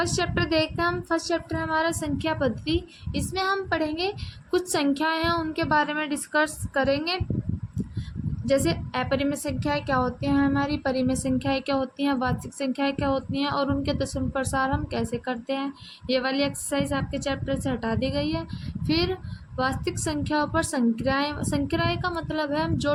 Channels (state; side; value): identical; both; correlation 1.00